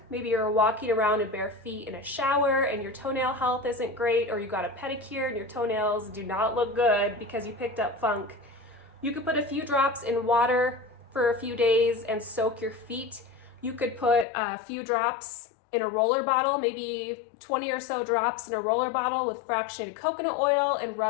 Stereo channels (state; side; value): drops out; right; at 14.2 s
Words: Maybe you're walking around in bare feet in a shower and your toenail health isn't great, or you got a pedicure and your toenails do not look good because you picked up funk. You could put a few drops in water for a few days and soak your feet. You could put a few drops in a roller bottle, maybe 20 or so drops in a roller bottle with fractionated coconut oil, and